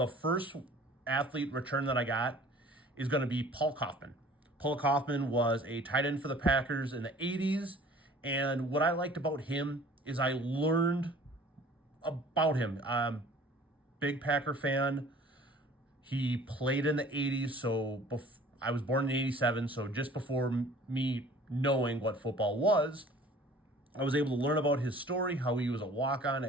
first athlete return that I got is going to be Paul Kaufman. Paul Kaufman was a tight end for the Packers in the 80s. And what I liked about him is I learned about him. Big Packer fan. He played in the 80s. So I was born in 87. So just before me knowing what football was, I was able to learn about his story, how he was a walk-on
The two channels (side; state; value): both; normal; correlation 0.49